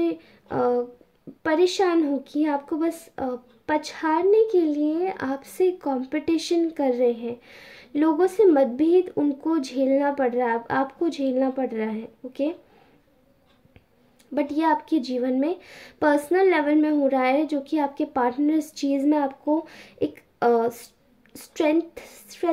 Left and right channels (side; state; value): both; identical; correlation 1.00